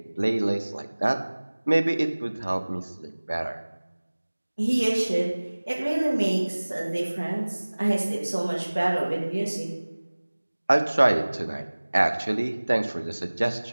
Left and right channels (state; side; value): inverted; both; correlation -1.00